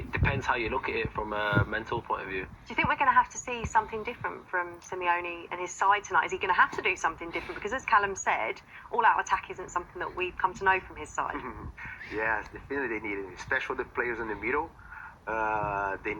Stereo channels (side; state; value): both; identical; correlation 1.00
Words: depends how you look at it from a mental point of view. Do you think we're going to have to see something different from Simeone and his side tonight? Is he going to have to do something different? Because as Callum said, all-out attack isn't something that we've come to know from his side. Yes, definitely they need it, especially the players in the middle. They